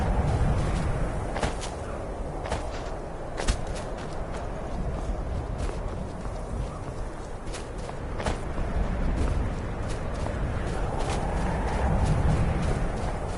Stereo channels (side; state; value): both; identical; correlation 1.00